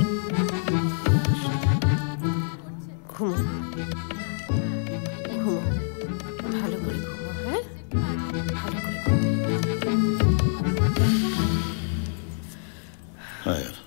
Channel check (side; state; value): right; silent; digital silence